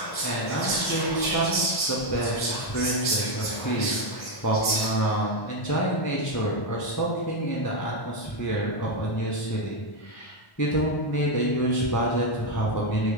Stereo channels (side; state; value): right; late; 1.1 ms